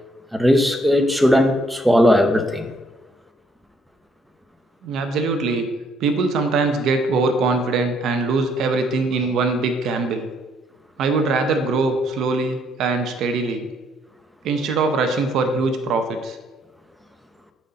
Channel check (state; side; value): normal; both; correlation 0.69